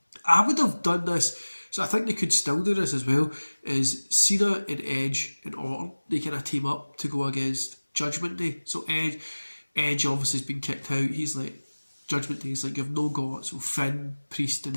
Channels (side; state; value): both; inverted; correlation -1.00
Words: I would have done this. So I think they could still do this as well, is Cena and Edge and Orton, they kind of team up to go against Judgment Day. So Edge obviously has been kicked out. He's like, Judgment Day is like, you've no got, so Finn, Priest